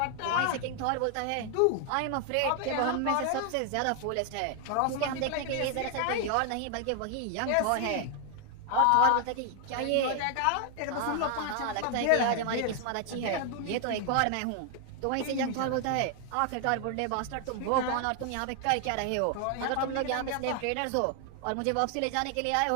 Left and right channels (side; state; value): both; different; correlation 0.00